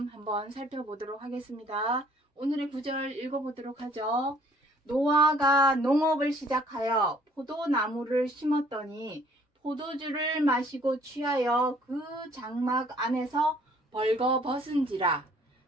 한번 살펴보도록 하겠습니다. 오늘의 구절 읽어보도록 하죠. 노아가 농업을 시작하여 포도나무를 심었더니 포도주를 마시고 취하여 그 장막 안에서 벌거벗은지라.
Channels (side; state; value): both; normal; correlation 0.59